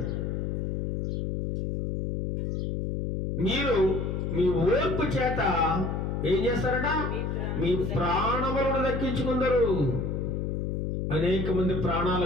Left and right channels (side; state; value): left; noise; hum, 1 dB below the sound